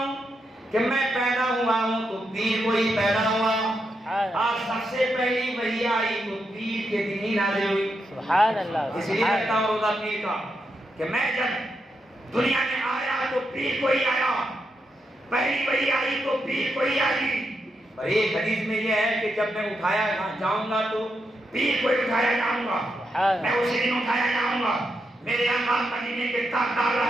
کہ میں پیدا ہوا ہوں تو پیر کو ہی پیدا ہوا، اور سب سے پہلی وحی آئی تو پیر کے دن ہی نازل ہوئی. سبحان اللہ. اس لیے رکھتا ہوں روزہ پیر کا کہ میں جب دنیا میں آیا تو پیر کو ہی آیا، پہلی وحی آئی تو پیر کو ہی آئی. اور ایک حدیث میں یہ ہے کہ جب میں اٹھایا جاؤں گا تو پیر کو ہی اٹھایا جاؤں گا، میں اسی دن اٹھایا جاؤں گا. میرے آقا مدینے کے تاجدار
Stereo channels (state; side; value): normal; both; correlation 0.83